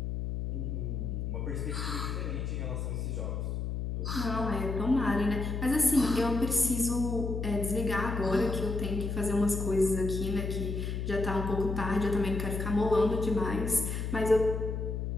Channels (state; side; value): noise; left; hum, 3 dB below the sound